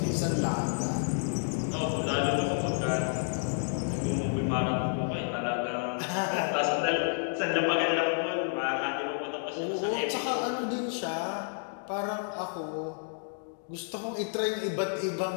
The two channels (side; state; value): right; silent; digital silence